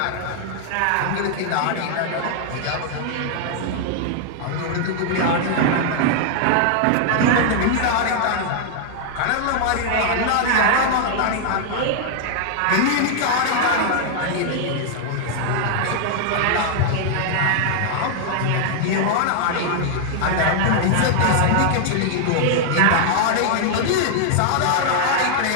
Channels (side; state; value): both; different; correlation -0.01